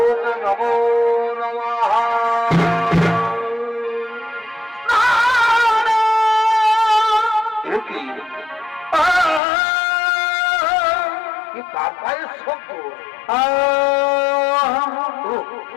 নমো নমঃ। কি কার পায়ের শব্দ?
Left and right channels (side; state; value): right; drops out; at 9.4 s